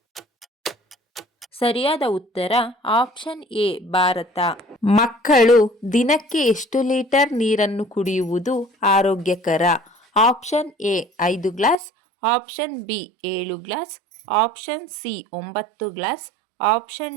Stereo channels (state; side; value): drops out; left; at 11.8 s